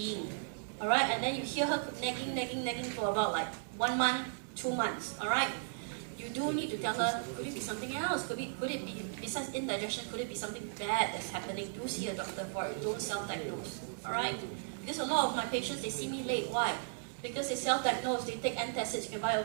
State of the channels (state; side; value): silent; left; digital silence